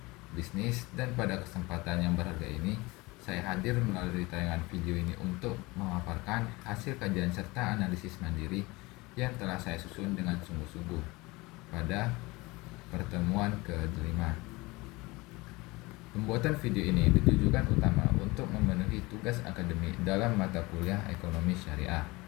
dan pada kesempatan yang berharga ini saya hadir melalui tayangan video ini untuk memaparkan hasil kajian serta analisis mandiri yang telah saya susun dengan sungguh-sungguh pada pertemuan ke-5. Pembuatan video ini ditujukan utama untuk memenuhi tugas akademik dalam mata kuliah ekonomi syariah.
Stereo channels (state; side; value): quieter; right; 22.8 dB